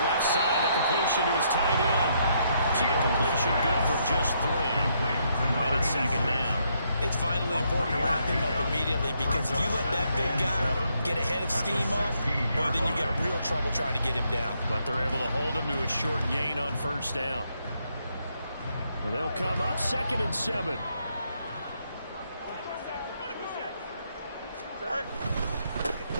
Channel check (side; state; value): both; inverted; correlation -0.75